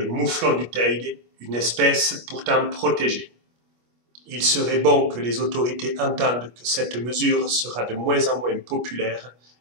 mouflon du Teide, une espèce pourtant protégée. Il serait bon que les autorités entendent que cette mesure sera de moins en moins populaire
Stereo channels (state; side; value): late; left; 25 ms